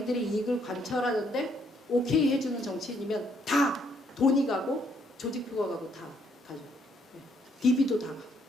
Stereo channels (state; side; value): normal; both; correlation 0.70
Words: 이익을 관철하는데 오케이 해주는 정치인이면 다 돈이 가고 조직표가 가고 다 가죠. DB도 다 가.